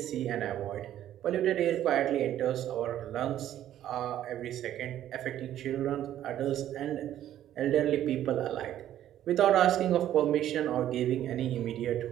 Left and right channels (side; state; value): left; quieter; 11.9 dB